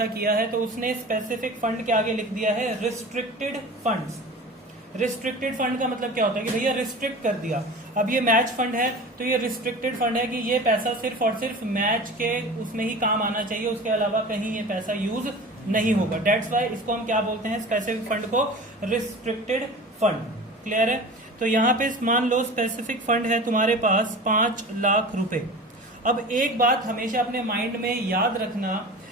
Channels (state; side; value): normal; both; correlation 0.36